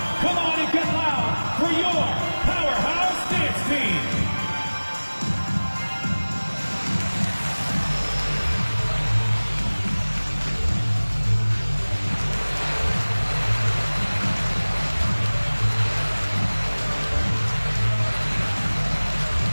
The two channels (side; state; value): both; inverted; correlation -1.00